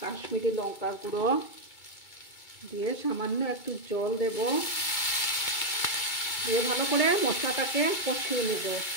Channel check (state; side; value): late; right; 2.3 ms